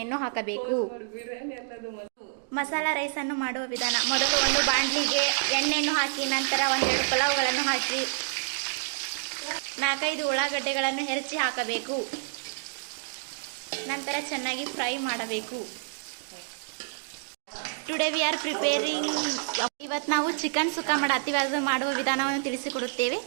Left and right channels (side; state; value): left; silent; digital silence